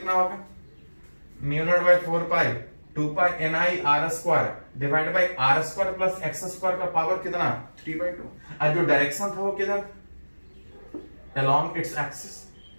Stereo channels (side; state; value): both; inverted; correlation -1.00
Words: होगा, mu not by 4 pi 2 pi N I R square divide by R square plus X square का पावर कितना 3/2, और जो डायरेक्शन था वो किधर, अलोंग इट्स एक्सिस।